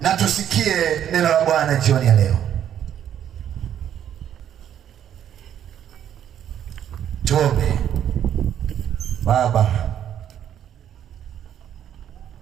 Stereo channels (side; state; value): left; quieter; 10.0 dB